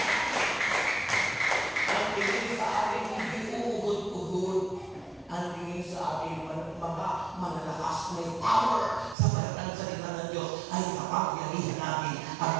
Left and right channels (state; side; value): drops out; left; at 9.2 s